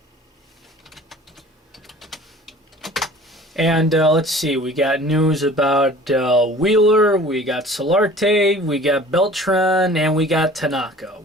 And let's see, we got news about Wheeler, we got Solarte, we got Beltran, and we got Tanaka.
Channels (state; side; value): normal; both; correlation 0.46